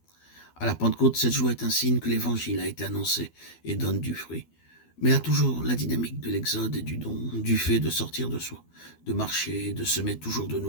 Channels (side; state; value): right; late; 12 ms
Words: À la Pentecôte, cette joie est un signe que l'Évangile a été annoncé et donne du fruit. Mais elle a toujours la dynamique de l'exode et du don, du fait de sortir de soi, de marcher, de semer toujours de